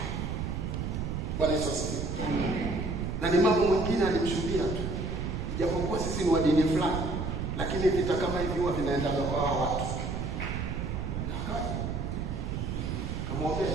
Yesu asifiwe. Na ni mambo mengine alimshuhudia tu. Ijapokuwa sisi ni wa dini fulani, lakini vita kama hivi huwa vinaenda kwa hao watu.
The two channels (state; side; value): noise; right; rumble, 3 dB below the sound